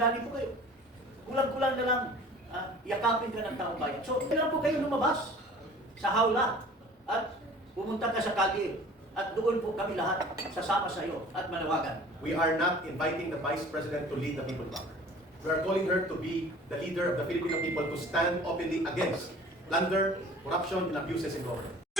po kayo. Kulang-kulang na lang yakapin ka ng taong bayan. So, kailan po kayo lumabas sa hawla at pumunta ka sa kalye at doon po kami lahat sasama sa iyo at manawagan. We are not inviting the Vice President to lead the people back. We are calling her to be the leader of the Filipino people to stand openly against plunder, corruption, and abuses in government.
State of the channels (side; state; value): both; normal; correlation 0.46